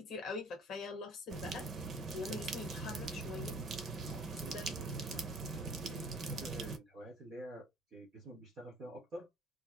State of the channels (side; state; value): both; normal; correlation 0.52